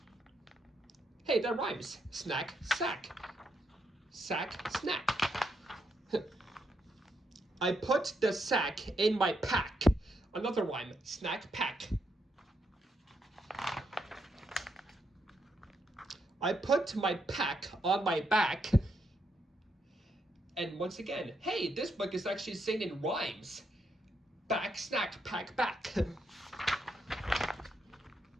Hey, that rhymes. Snack, sack. Sack, snack. I put the sack in my pack. Another rhyme. Snack, pack. I put my pack on my back. And once again, hey, this book is actually singing rhymes. Back, snack, pack, back.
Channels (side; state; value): both; normal; correlation 0.79